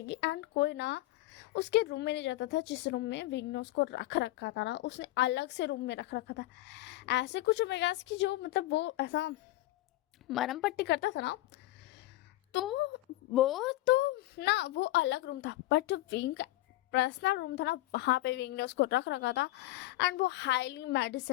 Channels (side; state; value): right; quieter; 17.3 dB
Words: एंड कोई ना उसके रूम में नहीं जाता था जिस रूम में विंग ने उसको रख रखा था ना, उसने अलग से रूम में रख रखा था। ऐसे कुछ ओमेगास की जो मतलब वो ऐसा मरम पट्टी करता था ना, तो वो तो ना वो अलग रूम था, बट जो विंग का पर्सनल रूम था ना वहाँ पे विंग ने उसको रख रखा था। एंड वो हाईली